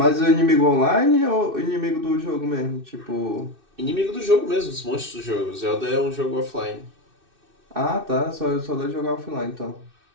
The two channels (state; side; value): late; left; 2.6 ms